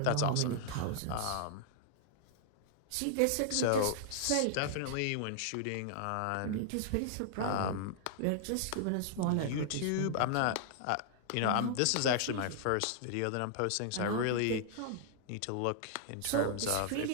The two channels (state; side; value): different; both; correlation -0.01